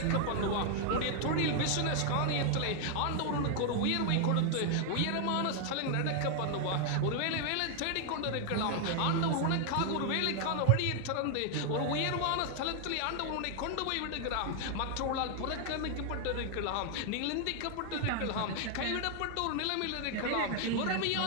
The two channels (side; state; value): both; different; correlation 0.00